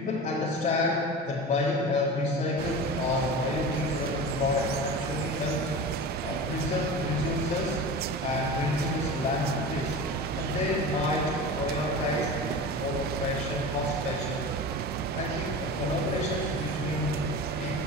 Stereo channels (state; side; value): normal; both; correlation 0.31